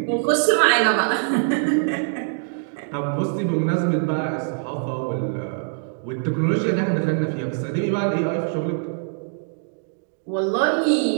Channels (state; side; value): silent; left; digital silence